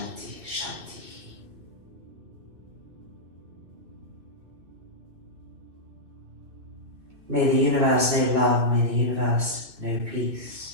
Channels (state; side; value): late; left; 2.6 ms